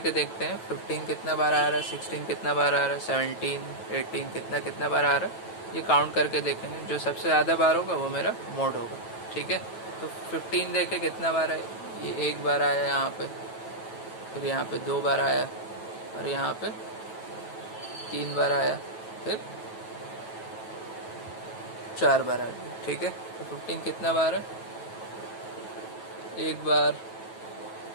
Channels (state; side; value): late; right; 9.2 ms